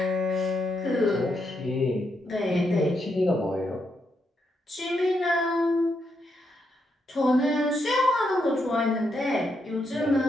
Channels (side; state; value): both; normal; correlation 0.80